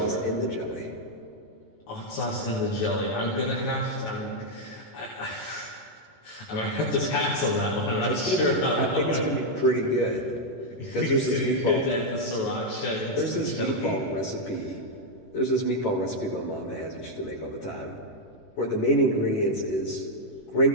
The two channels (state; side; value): late; right; 19 ms